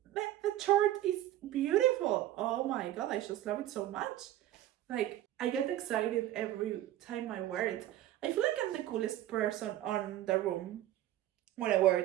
The chart is beautiful. Oh my god, I just love it so much. Like, I get excited every time I wear it. I feel like I'm the coolest person on the room when I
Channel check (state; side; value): quieter; left; 13.6 dB